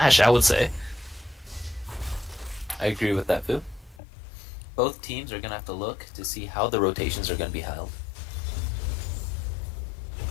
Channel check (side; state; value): right; drops out; at 4.0 s